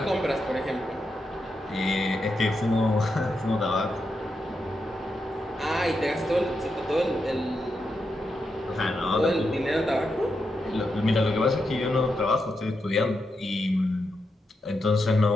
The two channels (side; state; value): both; normal; correlation 0.85